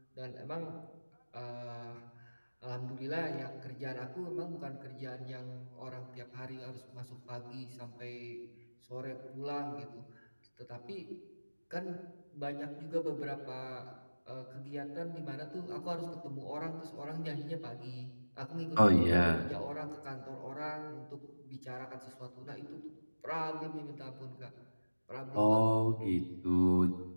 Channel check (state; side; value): inverted; both; correlation -1.00